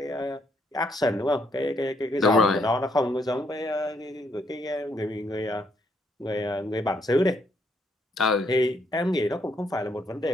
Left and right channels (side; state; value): both; normal; correlation 0.73